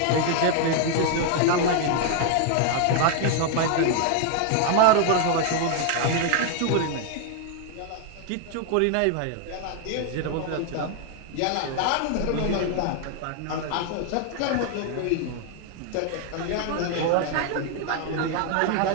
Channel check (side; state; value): both; different; correlation 0.00